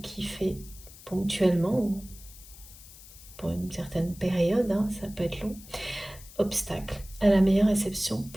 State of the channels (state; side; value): noise; left; hiss, 19 dB below the sound